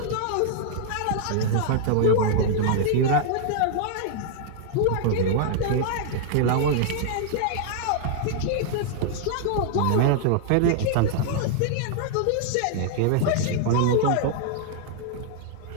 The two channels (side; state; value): both; different; correlation -0.01